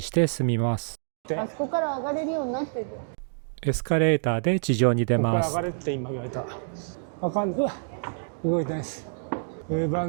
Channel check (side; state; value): left; silent; digital silence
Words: て進みます。あそこから上がれるようになってる。エスカレーターで地上に出ます。ここから上がれって今言われた。あかん、動いてないです。ウーバー